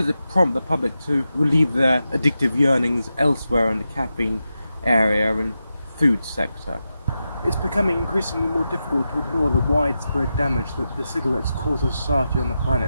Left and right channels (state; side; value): inverted; both; correlation -0.90